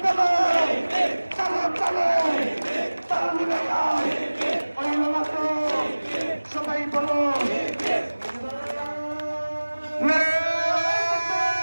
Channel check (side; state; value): both; inverted; correlation -1.00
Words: বলো চলো চলো তাল মিলাইয়া ওই তো সবাই বলো